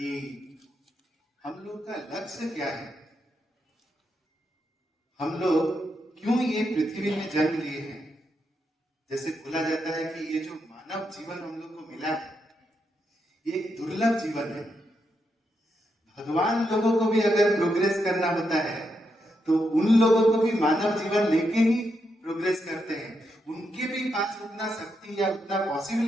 हम लोग का लक्ष्य क्या है, हम लोग क्यों ये पृथ्वी में जन्म लिए हैं। जैसे बोला जाता है कि ये जो मानव जीवन हम लोग को मिला है ये एक दुर्लभ जीवन है। भगवान लोगों को भी अगर प्रोग्रेस करना होता है तो उन लोगों को भी मानव जीवन लेके ही प्रोग्रेस करते हैं। उनके भी पास उतना शक्ति या उतना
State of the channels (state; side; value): normal; both; correlation 0.82